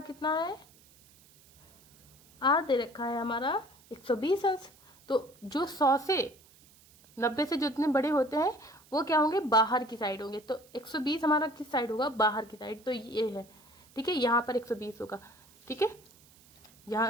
कितना है, R दे रखा है हमारा 120 अंश। तो जो 100 से 90 से जितने बड़े होते हैं वो क्या होंगे, बाहर की साइड होंगे। तो 120 हमारा किस साइड होगा, बाहर की साइड, तो ये है। ठीक है, यहाँ पर 120 होगा। ठीक है, यहाँ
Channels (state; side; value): noise; right; hiss, 27 dB below the sound